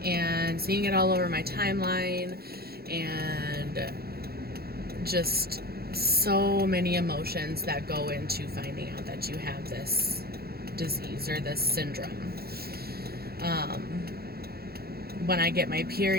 and seeing it all over my timeline, and just so many emotions that go into finding out that you have this disease or this syndrome. When I get my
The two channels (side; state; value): left; late; 0.45 ms